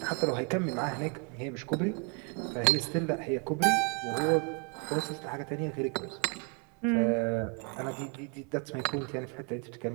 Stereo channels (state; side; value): quieter; left; 36.2 dB